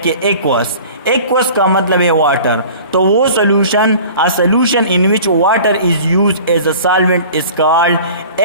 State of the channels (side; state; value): both; inverted; correlation -0.43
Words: एक्वस का मतलब है वाटर। तो वो solution, a solution in which water is use as a solvent is called